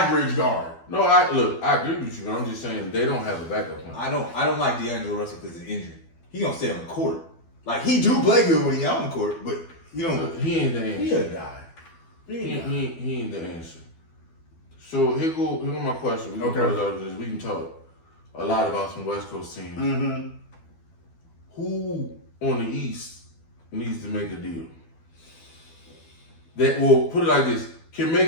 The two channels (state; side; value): late; right; 12 ms